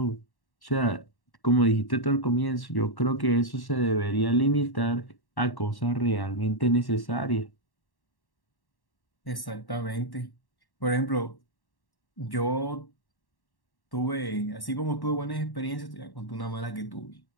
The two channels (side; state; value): right; late; 1.1 ms